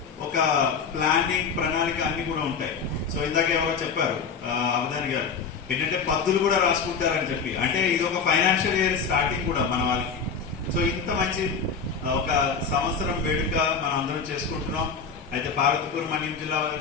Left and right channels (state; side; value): quieter; right; 5.6 dB